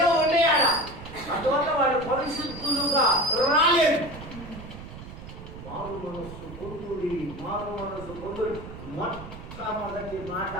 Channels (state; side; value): noise; right; rumble, 13 dB below the sound